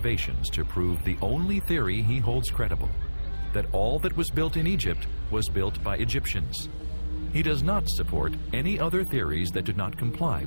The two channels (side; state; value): both; inverted; correlation -1.00